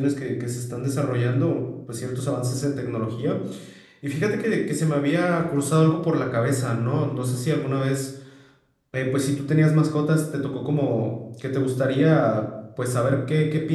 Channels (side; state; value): both; identical; correlation 1.00